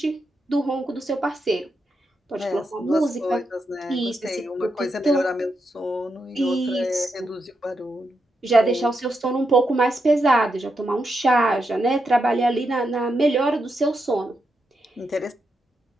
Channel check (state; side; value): normal; both; correlation 0.84